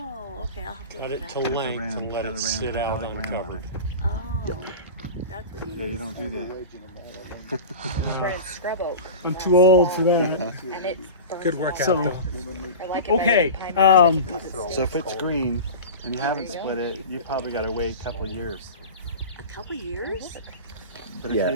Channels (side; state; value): both; inverted; correlation -0.31